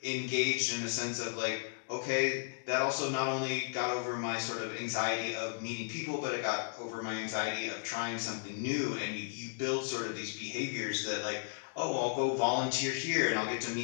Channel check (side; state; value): right; silent; digital silence